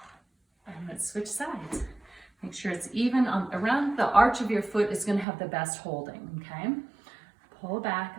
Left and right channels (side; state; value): left; drops out; at 5.2 s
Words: I'm going to switch sides. Make sure it's even around the arch of your foot is going to have the best holding, okay? Pull